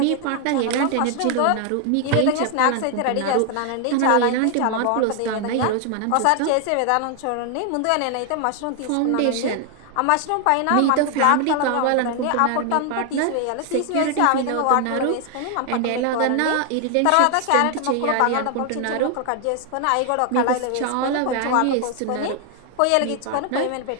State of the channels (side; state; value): both; different; correlation 0.00